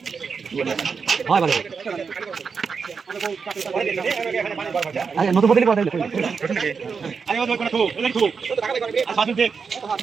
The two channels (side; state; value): left; quieter; 5.5 dB